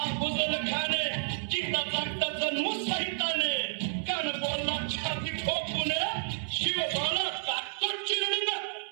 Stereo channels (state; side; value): silent; left; 57 dB below the other